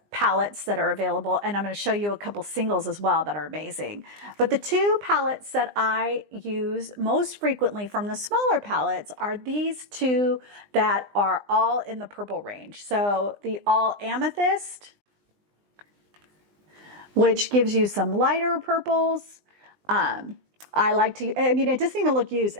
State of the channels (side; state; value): left; late; 20 ms